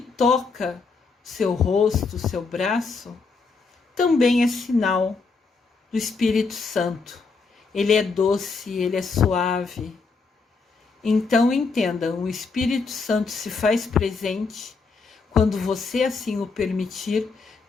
toca seu rosto, seu braço, também é sinal do Espírito Santo. Ele é doce, ele é suave. Então entendam, o Espírito Santo se faz presente quando você assim o permitir,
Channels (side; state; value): right; quieter; 4.5 dB